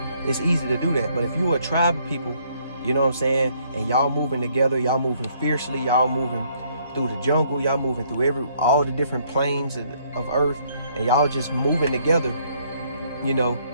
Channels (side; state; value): both; inverted; correlation -0.66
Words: it's easy to do that. But if you're a tribe of people, you know what I'm saying, and y'all moving together, y'all moving fiercely, y'all moving through the jungle, y'all moving through all the different planes of earth, and y'all just moving together, you know,